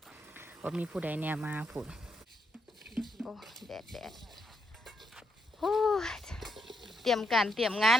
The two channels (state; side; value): normal; both; correlation 0.79